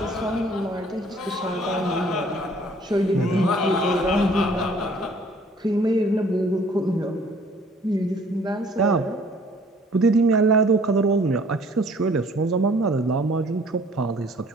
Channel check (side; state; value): both; normal; correlation 0.56